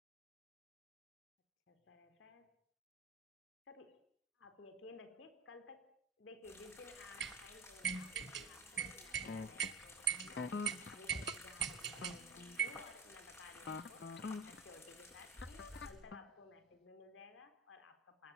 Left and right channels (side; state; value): left; quieter; 3.8 dB